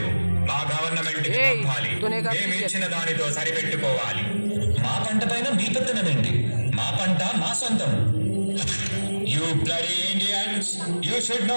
మా గవర్నమెంట్ కి పంపాలి, మేము ఇచ్చిన దానితో సరిపెట్టుకోవాలి. మా పంట పైన మీ పెత్తనమేంటి? మా పంట మా సొంతం. You bloody Indians, you should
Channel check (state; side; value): inverted; both; correlation -1.00